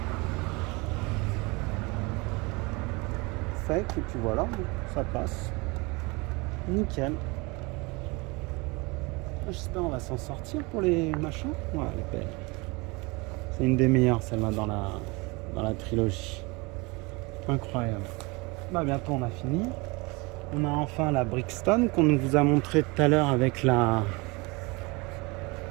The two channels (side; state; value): left; quieter; 26.3 dB